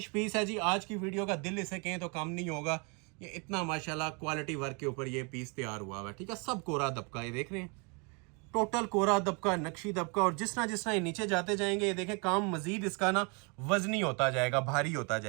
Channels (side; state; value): left; quieter; 32.9 dB